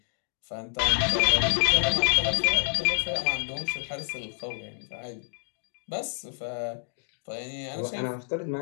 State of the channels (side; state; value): right; silent; digital silence